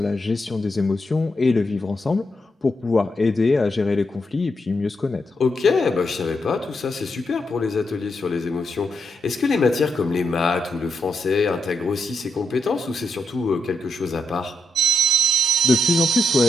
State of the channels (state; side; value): normal; both; correlation 0.83